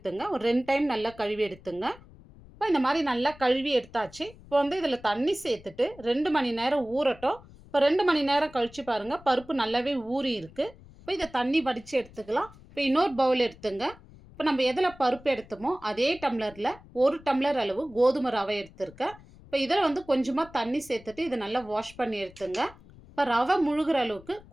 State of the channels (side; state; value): left; noise; rumble, 22 dB below the sound